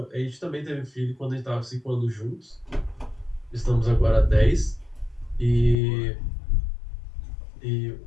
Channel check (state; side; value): drops out; right; at 5.8 s